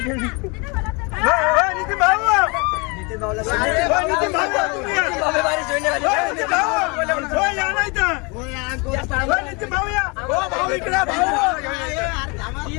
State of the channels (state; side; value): quieter; right; 29.7 dB